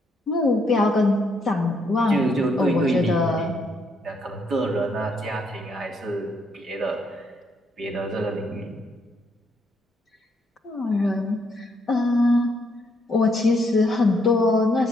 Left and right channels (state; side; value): normal; both; correlation 0.73